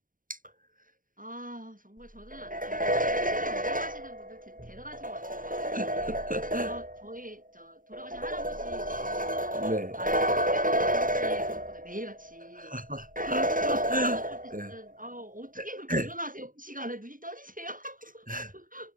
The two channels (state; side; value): late; left; 0.39 ms